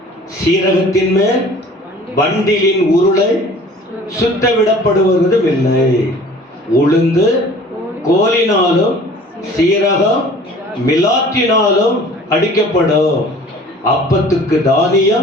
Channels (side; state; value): both; normal; correlation 0.48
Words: சீரகத்தின் மேல் வண்டிலின் உருளை சுத்த விடப்படுவதும் இல்லை. உளுந்து கோலினாலும் சீரகம் மிலாற்றினாலும் அடிக்கப்படும், அப்பத்துக்கு